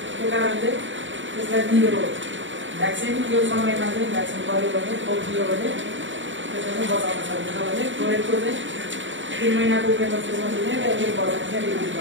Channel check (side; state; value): left; late; 0.55 ms